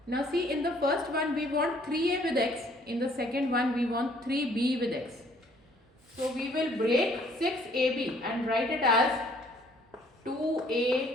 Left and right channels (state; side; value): normal; both; correlation 0.61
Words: Now see, in the first one we want 3a with x, in the second one we want 3b with x. So we will break 6ab and write it as